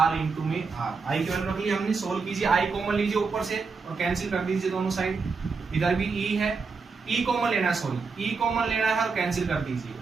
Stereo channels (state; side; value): quieter; left; 4.8 dB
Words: into में R। I की वैल्यू रख ली हमने, सोल्व कीजिए, I कॉमन लीजिए ऊपर से और कैंसिल कर दीजिए दोनों साइड, इधर भी E है, E कॉमन लेना है, सॉरी E कॉमन लेना है और कैंसिल कर दीजिए,